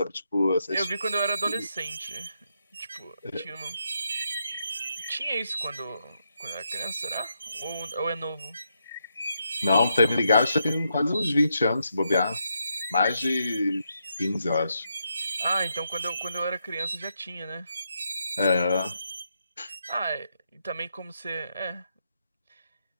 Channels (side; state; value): both; inverted; correlation -0.81